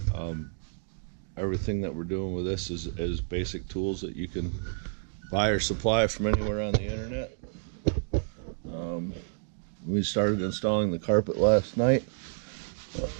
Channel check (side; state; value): left; silent; 58 dB below the other